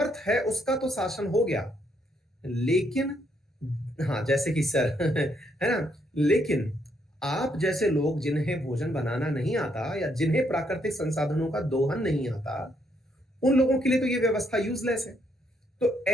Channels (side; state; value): both; normal; correlation 0.73